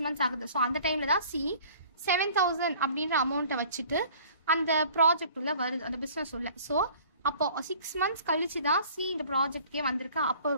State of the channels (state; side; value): inverted; both; correlation -0.50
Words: months ஆகுது. ஸோ அந்த டைமில் தான் C 7,000 அப்படின்ற அமௌண்ட்டை வச்சுட்டு அந்த ப்ராஜெக்ட் உள்ள வருது, அந்த பிஸ்னஸ் உள்ள. ஸோ அப்போ 6 months கழிச்சு தான் C இந்த ப்ராஜெக்ட்கே வந்திருக்கா. அப்போ